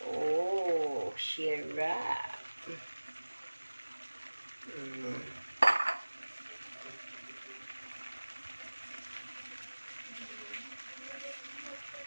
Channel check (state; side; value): inverted; both; correlation -1.00